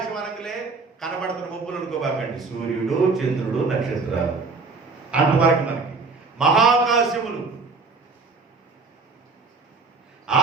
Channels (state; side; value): quieter; left; 4.1 dB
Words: అనగలే కనబడుతున్న మబ్బులు అనుకోబాకండి, సూర్యుడు, చంద్రుడు, నక్షత్రాలు అంతవరకు మనకి మహాకాశములు.